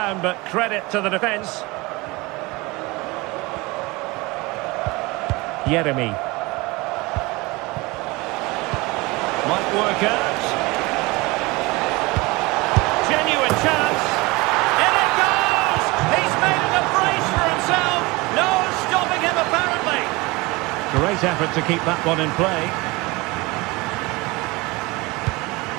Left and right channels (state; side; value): quieter; left; 23.6 dB